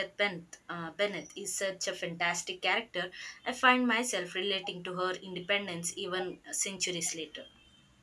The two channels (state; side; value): identical; both; correlation 1.00